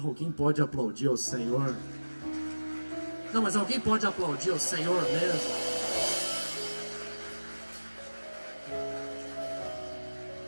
pode aplaudir ao Senhor? Não, mas alguém pode aplaudir ao Senhor mesmo?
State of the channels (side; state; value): both; inverted; correlation -1.00